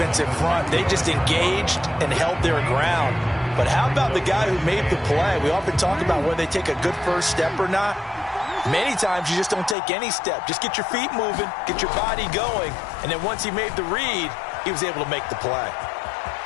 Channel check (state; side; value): drops out; right; at 9.8 s